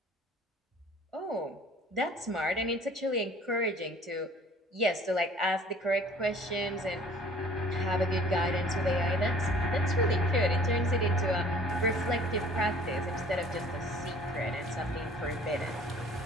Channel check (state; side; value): normal; both; correlation 0.52